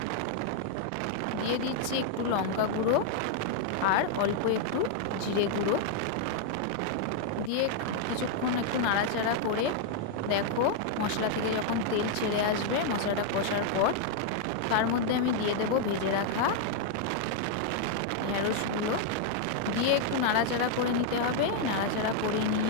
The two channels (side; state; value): both; different; correlation 0.00